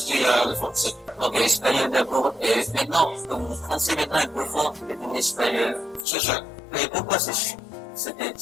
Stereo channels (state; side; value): drops out; right; at 6.1 s